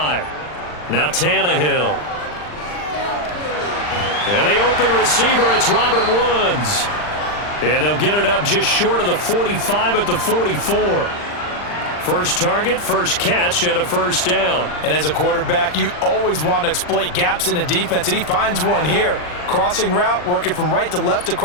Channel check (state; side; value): late; right; 39 ms